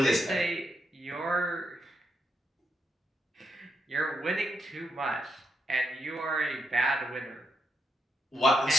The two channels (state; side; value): normal; both; correlation 0.81